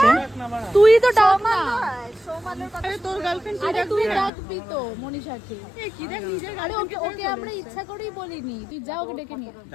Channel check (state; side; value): drops out; right; at 4.3 s